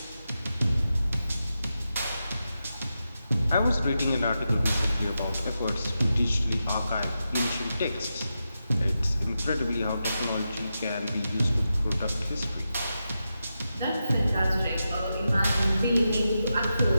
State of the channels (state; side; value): inverted; both; correlation -0.89